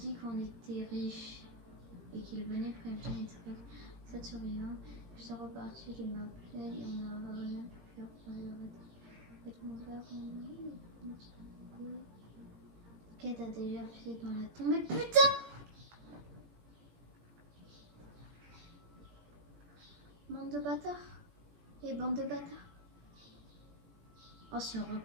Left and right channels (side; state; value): left; late; 17 ms